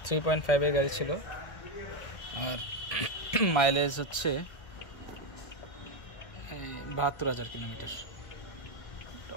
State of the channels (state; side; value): late; right; 1.8 ms